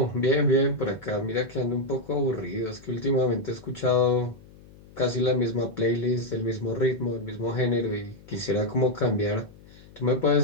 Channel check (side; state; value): left; noise; hum, 22 dB below the sound